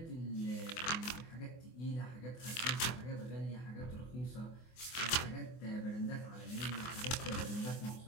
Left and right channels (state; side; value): late; right; 24 ms